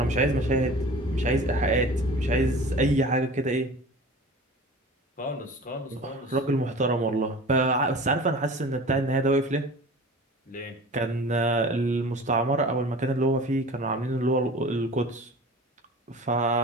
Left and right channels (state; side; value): normal; both; correlation 0.39